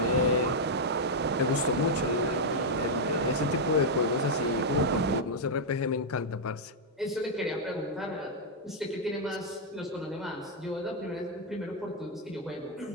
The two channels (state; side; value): normal; both; correlation -0.03